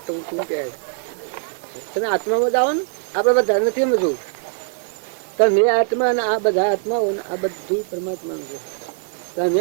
હું શું કહે તમે આત્મામાં જ આવો ને આપણે બધા નથી સમજવું. તમે આત્મા ને આ બધા આત્માઓ ને આ બધું પરમાત્માનું છે. તમે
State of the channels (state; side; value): silent; left; digital silence